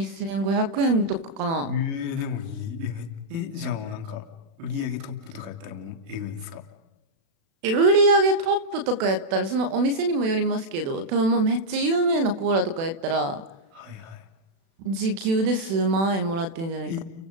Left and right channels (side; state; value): left; late; 36 ms